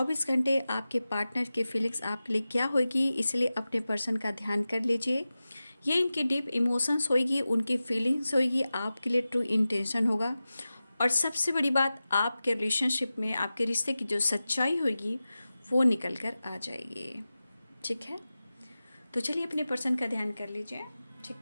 घंटे आपके पार्टनर की फीलिंग्स आपके लिए क्या होगी, इसलिए अपने पर्सन का ध्यान कर लीजिए। ये इनकी डीप इमोशंस होगी, उनकी फीलिंग्स होगी, आपके लिए ट्रू इंटेंशन होगा। और सबसे बड़ी बात, आपके रिलेशनशिप में आपके रिश्ते की जो सच्चाई होगी वो निकल कर आ जाएगी। ठीक है, तो चलिए अपने पर्सन का ध्यान कर लीजिए।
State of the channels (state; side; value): inverted; both; correlation -0.95